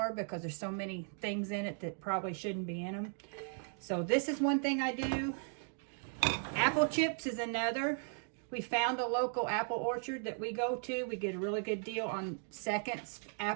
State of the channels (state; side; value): silent; left; 53 dB below the other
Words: because there's so many things in it that probably shouldn't be in them. So this is one thing I do. Apple chips is another. We found a local apple orchard that we go to. We get a really good deal on seconds